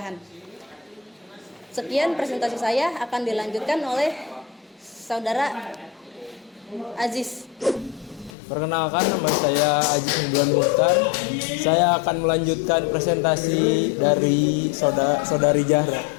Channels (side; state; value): right; drops out; at 8.3 s